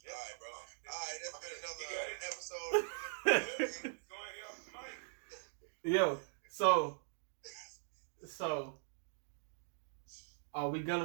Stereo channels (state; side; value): silent; left; digital silence